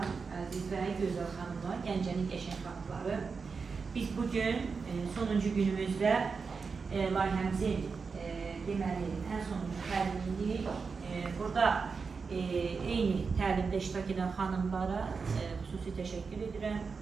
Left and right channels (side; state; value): left; quieter; 5.1 dB